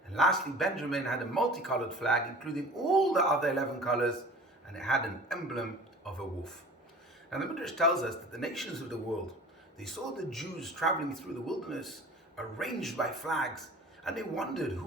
And lastly, Benjamin had a multicolored flag, including all the other 11 colors, and it had an emblem of a wolf. Now the Midrash tells us that the nations of the world, they saw the Jews traveling through the wilderness, arranged by flags, and they wondered,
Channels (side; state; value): both; normal; correlation 0.42